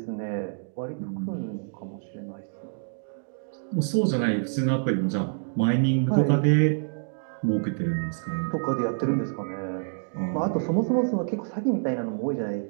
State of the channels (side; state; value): left; silent; digital silence